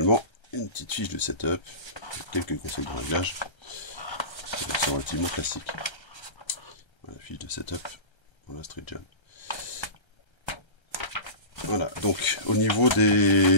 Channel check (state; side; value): late; right; 1.3 ms